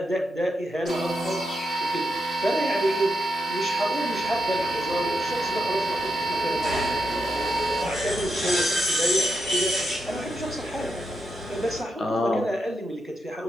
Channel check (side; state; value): both; normal; correlation 0.85